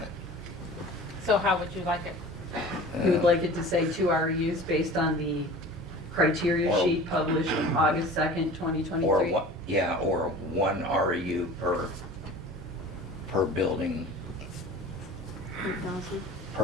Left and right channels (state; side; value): normal; both; correlation 0.40